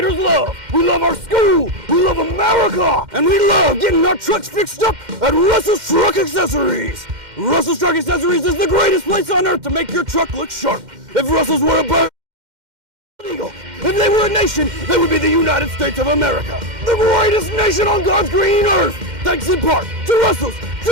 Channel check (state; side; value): late; left; 2.1 ms